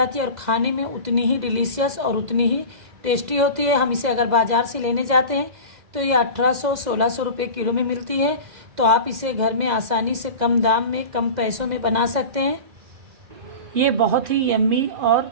है और खाने में उतनी ही डिलीशियस और उतनी ही टेस्टी होती है। हम इसे अगर बाज़ार से लेने जाते हैं तो ये 1800-1600 रुपये किलो में मिलती है, तो आप इसे घर में आसानी से कम दाम में कम पैसों में बना सकते हैं। ये बहुत ही यम्मी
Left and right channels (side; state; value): left; late; 2.0 ms